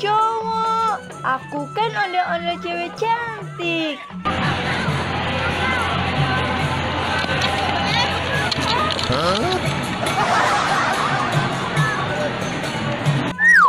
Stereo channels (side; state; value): both; identical; correlation 1.00